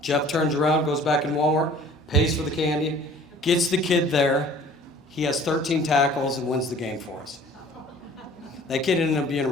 Jeff turns around, goes back in Walmart, pays for the candy, gets the kid there. He has 13 tackles and wins the game for us. That kid ended up being a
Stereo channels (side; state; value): both; normal; correlation 0.50